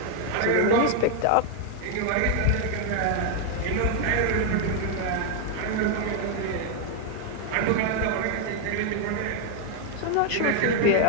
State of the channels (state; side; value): different; both; correlation 0.00